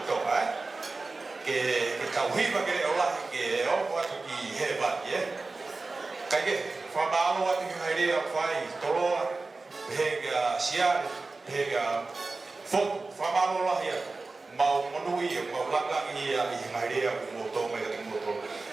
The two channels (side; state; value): left; quieter; 3.6 dB